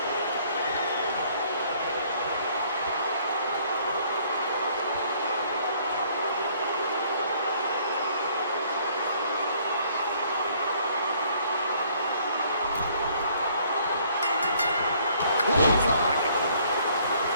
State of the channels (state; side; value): inverted; both; correlation -0.62